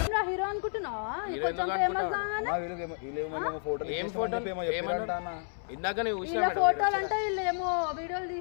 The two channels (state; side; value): silent; right; 57 dB below the other